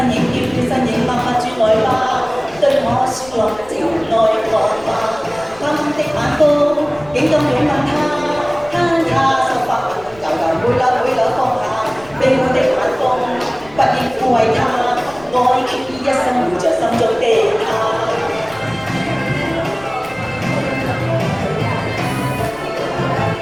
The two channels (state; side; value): noise; left; rumble, 23 dB below the sound